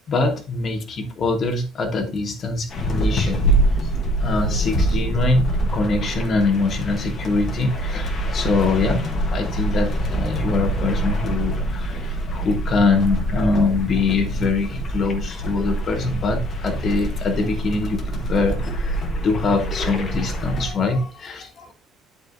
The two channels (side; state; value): both; normal; correlation 0.60